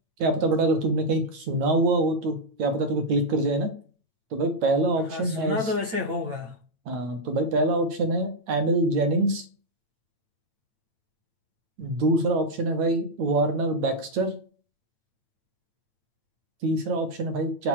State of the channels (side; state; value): left; late; 8.9 ms